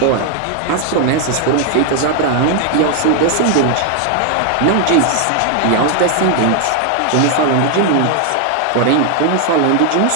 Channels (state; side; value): different; both; correlation 0.00